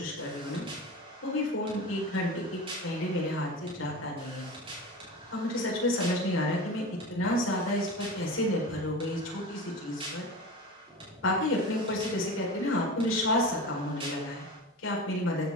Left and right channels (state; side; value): normal; both; correlation 0.30